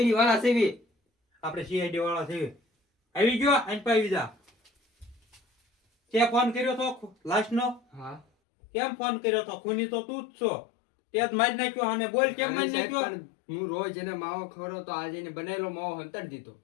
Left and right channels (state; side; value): drops out; right; at 8.2 s